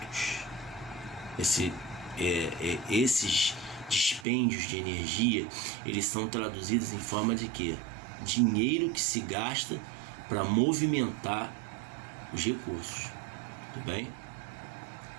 Esses dispêndios de energia, eles são traduzidos em forma de quê? Dinheiro que se gasta para movimentar os recursos. Tudo bem?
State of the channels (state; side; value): drops out; left; at 4.2 s